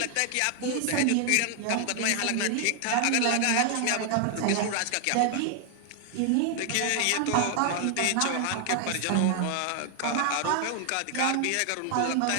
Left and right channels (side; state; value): both; different; correlation 0.00